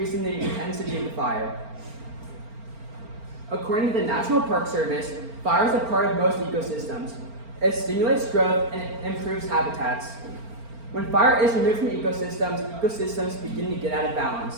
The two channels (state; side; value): late; left; 4.4 ms